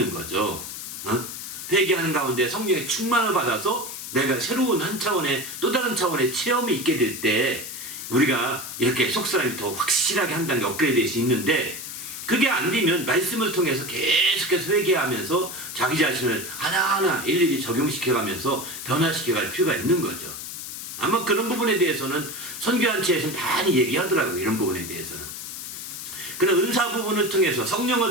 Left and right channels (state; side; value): noise; left; hiss, 9 dB below the sound